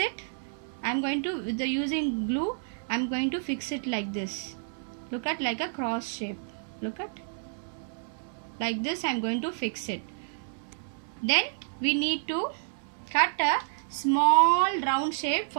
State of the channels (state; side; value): silent; left; 58 dB below the other